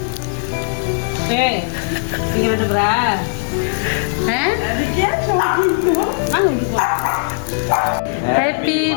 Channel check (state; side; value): silent; right; 67 dB below the other